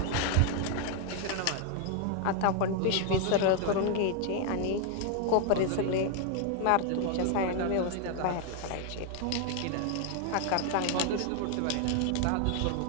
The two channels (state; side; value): different; both; correlation 0.00